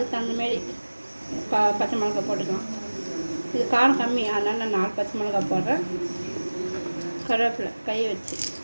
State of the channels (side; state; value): both; inverted; correlation -1.00